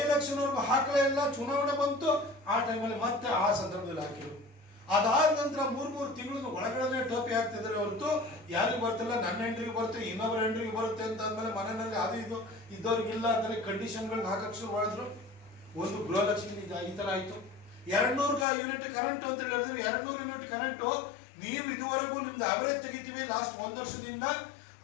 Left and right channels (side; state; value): right; drops out; at 18.4 s